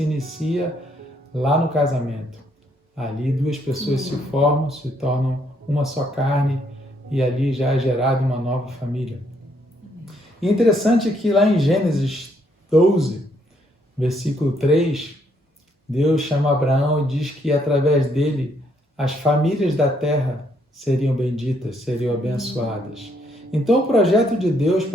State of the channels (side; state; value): both; normal; correlation 0.71